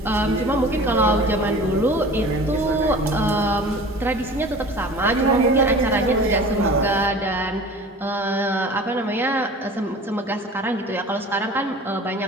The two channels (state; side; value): normal; both; correlation 0.41